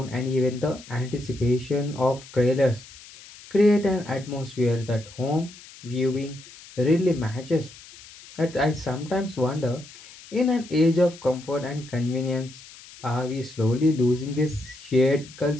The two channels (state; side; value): noise; left; hiss, 19 dB below the sound